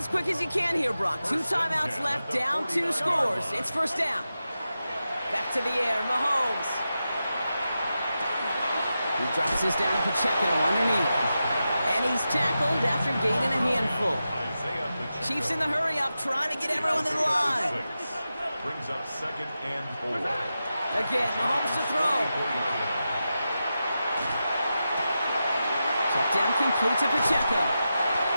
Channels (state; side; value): inverted; both; correlation -0.91